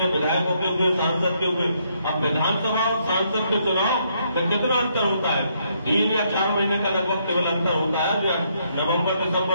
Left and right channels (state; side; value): inverted; both; correlation -0.73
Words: विधायकों के हुए, सांसद के हुए। अब विधानसभा और सांसद के चुनाव में कितना अंतर होता है? 3 या 4 महीने का लगभग केवल अंतर होता है। नवंबर